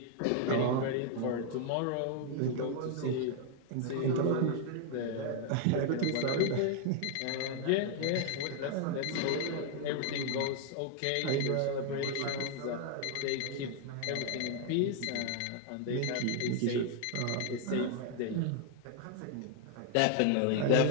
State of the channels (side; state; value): both; different; correlation 0.00